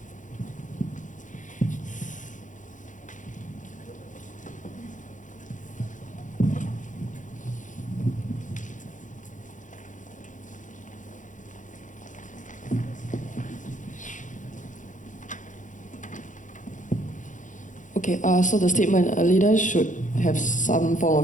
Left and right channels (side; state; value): right; late; 0.37 ms